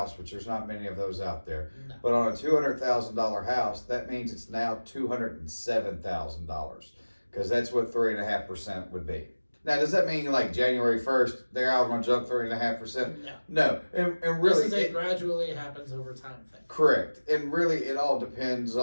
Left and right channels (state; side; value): inverted; both; correlation -1.00